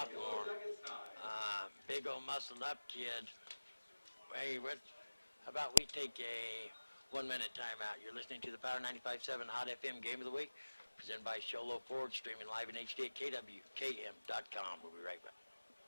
Big old muscled up kid. Hey, how about we take a 1-minute timeout? You're listening to the Power 95.7 Hot FM Game of the Week, presented by Sholo Ford, streaming live in HD at KWKM.com. We'll be right back.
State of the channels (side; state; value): both; inverted; correlation -1.00